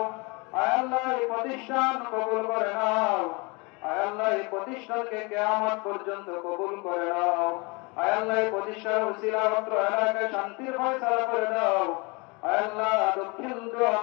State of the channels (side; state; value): right; quieter; 28.5 dB